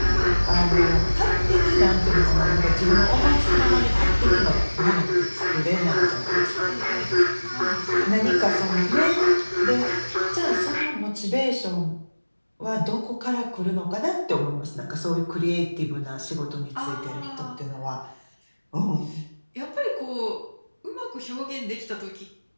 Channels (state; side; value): inverted; both; correlation -1.00